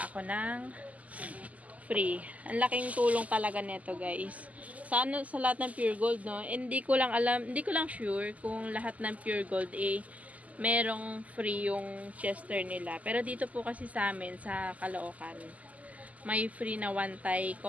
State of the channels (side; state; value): left; late; 0.073 ms